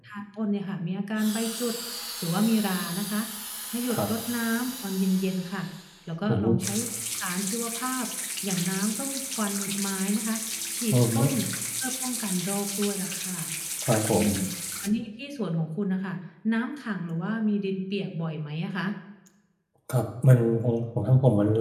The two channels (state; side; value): identical; both; correlation 1.00